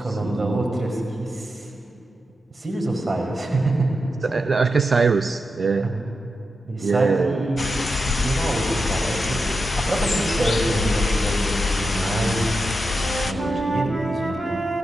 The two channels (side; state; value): both; normal; correlation 0.88